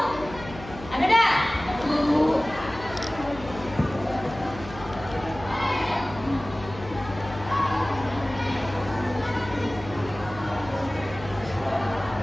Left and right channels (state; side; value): noise; left; hum, 14 dB below the sound